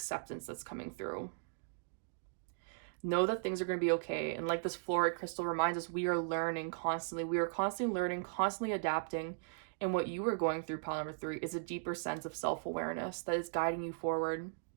that's coming through. Know that things are going to be okay. And like this fluorite crystal reminds us, we are learning constantly. We are constantly learning, constantly adapting. And what you are going through, pile number 3, is a deeper sense of self-awareness that is guiding you forward.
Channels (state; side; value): silent; left; digital silence